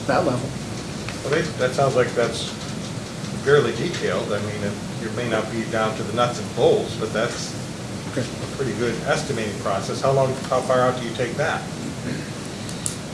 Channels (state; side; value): identical; both; correlation 1.00